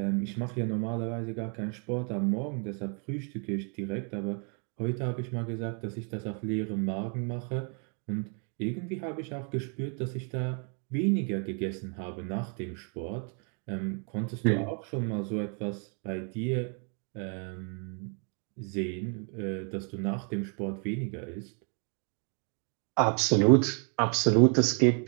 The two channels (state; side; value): quieter; left; 39.3 dB